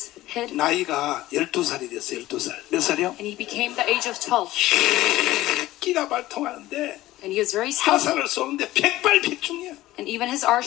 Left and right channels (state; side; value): quieter; right; 16.4 dB